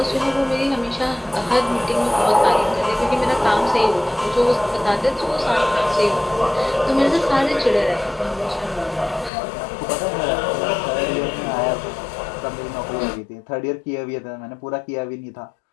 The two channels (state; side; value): drops out; right; at 9.3 s